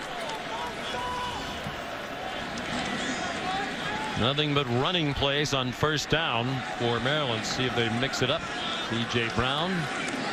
Nothing but running plays on first down for Maryland. See if they mix it up. C.J. Brown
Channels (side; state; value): both; identical; correlation 1.00